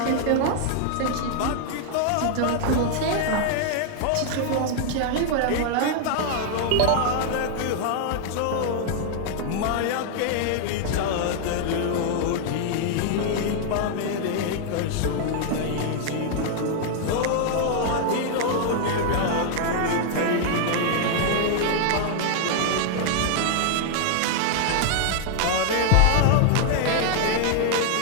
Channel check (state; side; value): different; both; correlation 0.00